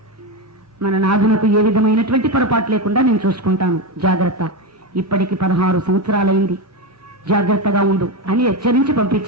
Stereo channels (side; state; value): both; normal; correlation 0.13